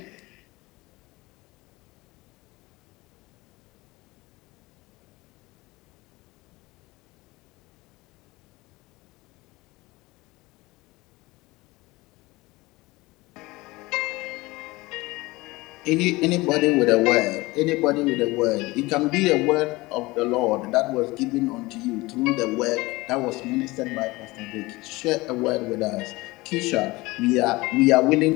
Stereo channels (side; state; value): right; quieter; 21.5 dB